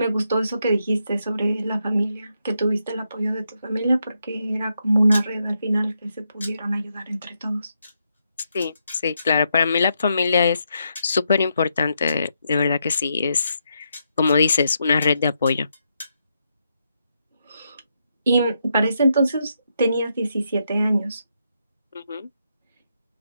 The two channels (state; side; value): inverted; both; correlation -0.81